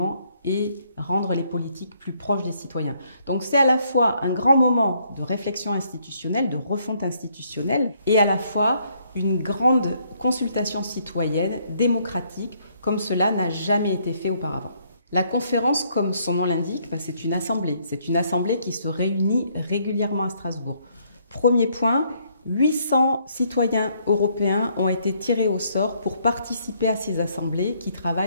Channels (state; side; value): inverted; both; correlation -0.69